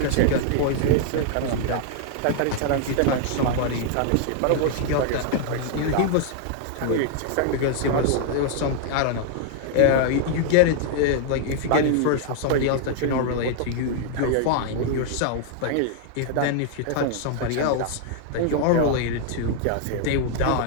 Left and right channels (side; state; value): both; different; correlation 0.00